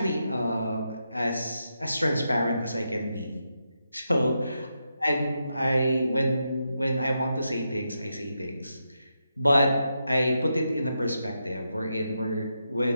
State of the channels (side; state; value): both; inverted; correlation -0.85